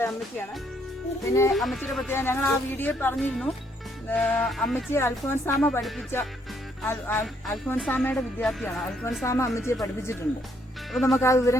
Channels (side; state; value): both; normal; correlation 0.70